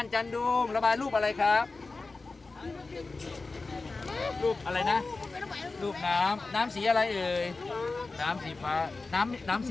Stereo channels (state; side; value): quieter; right; 3.7 dB